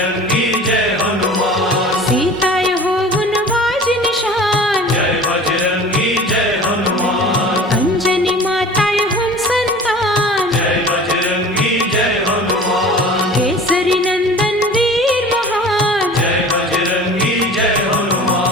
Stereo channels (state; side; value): normal; both; correlation 0.41